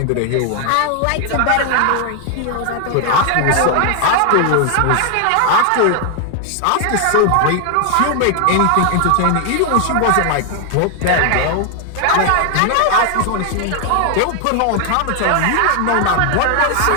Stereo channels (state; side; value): different; both; correlation 0.00